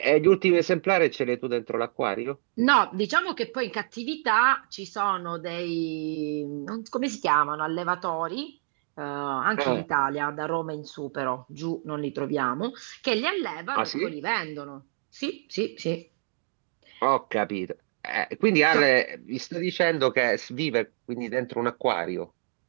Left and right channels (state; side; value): silent; left; 59 dB below the other